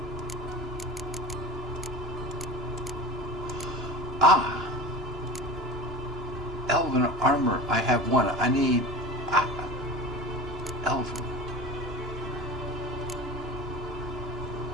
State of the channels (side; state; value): both; normal; correlation 0.33